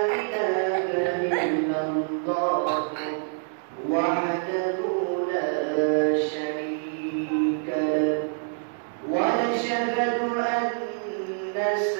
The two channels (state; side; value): silent; left; 61 dB below the other